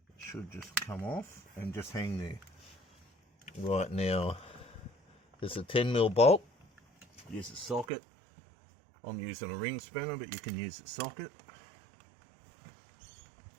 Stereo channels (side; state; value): left; drops out; at 7.9 s